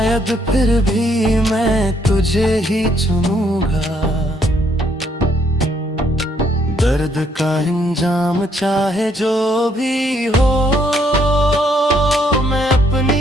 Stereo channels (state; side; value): normal; both; correlation 0.70